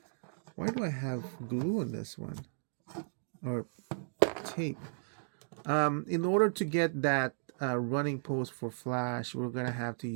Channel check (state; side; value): silent; left; digital silence